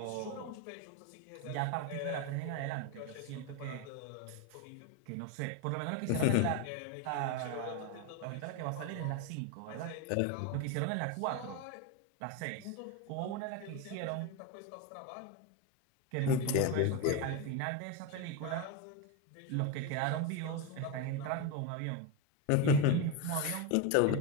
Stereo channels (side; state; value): both; different; correlation 0.03